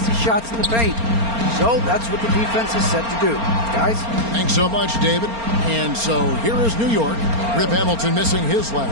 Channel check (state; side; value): late; left; 4.3 ms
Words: shots in the paint. So that's what the defense is set to do. Guys? Thanks so much, David. And so here is New York. Rip Hamilton missing his